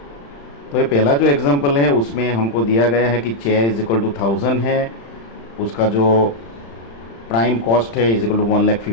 तो ये पहला जो एग्जाम्पल है उसमें हमको दिया गया है कि चेयर इज इक्वल टू 1000 है, उसका जो प्राइम कॉस्ट है is equal to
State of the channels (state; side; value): late; right; 35 ms